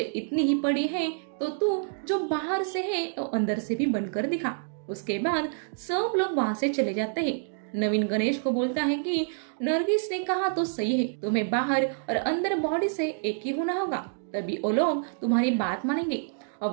इतनी ही पड़ी है तो तू जो बाहर से है तो अंदर से भी बनकर दिखा। उसके बाद सब लोग वहाँ से चले जाते हैं। नवीन गणेश को बोलता है कि नरगिस ने कहा तो सही है, तुम्हें बाहर और अंदर बॉडी से एक ही होना होगा, तभी वो लोग तुम्हारी बात मानेंगे।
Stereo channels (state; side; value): silent; left; digital silence